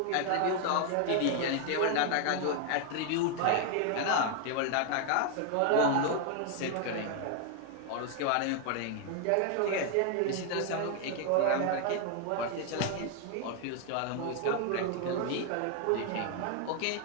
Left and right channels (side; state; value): both; different; correlation 0.00